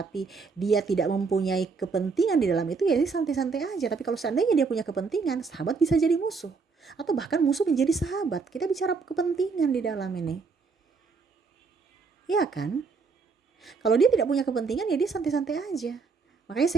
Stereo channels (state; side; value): quieter; left; 4.8 dB